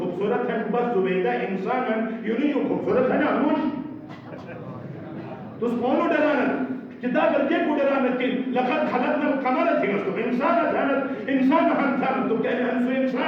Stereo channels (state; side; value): identical; both; correlation 1.00